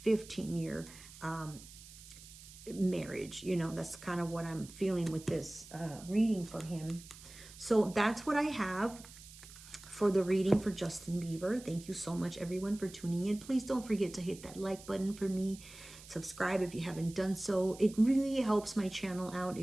15 year marriage. That's kind of what I'm feeling with this reading for him. So that's what I have for the reading for Justin Bieber. Thank you so much, everyone, for tuning in. Please don't forget to hit that like button for me. Subscribe if you haven't done so. It really helps my channel out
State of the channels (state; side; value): noise; right; hiss, 18 dB below the sound